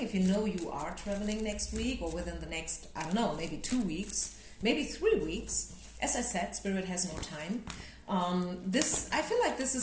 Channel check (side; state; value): both; identical; correlation 1.00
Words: you know you are traveling next week or within the next, I don't know, maybe 2 weeks, maybe 3 weeks, as I said, Spirit has no time. I feel like this